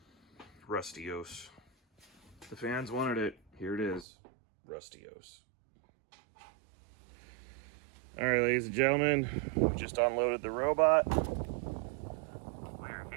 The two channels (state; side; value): drops out; left; at 4.0 s